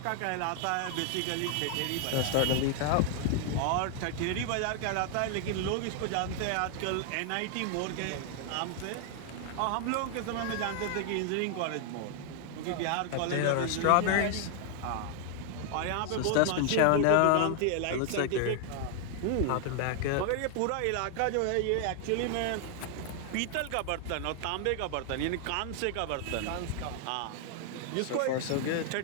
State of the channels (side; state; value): both; different; correlation 0.00